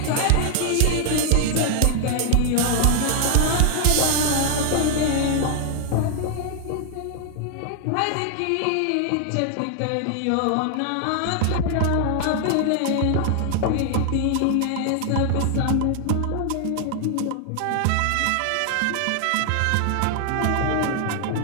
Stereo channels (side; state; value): both; different; correlation 0.00